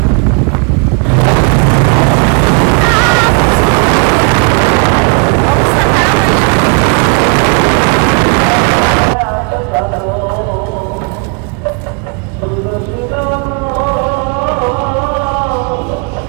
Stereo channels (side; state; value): left; quieter; 35.9 dB